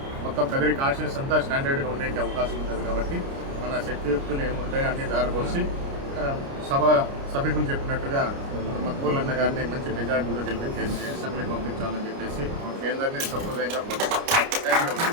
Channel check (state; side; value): late; left; 29 ms